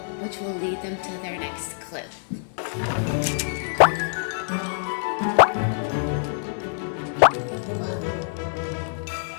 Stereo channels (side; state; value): right; silent; 62 dB below the other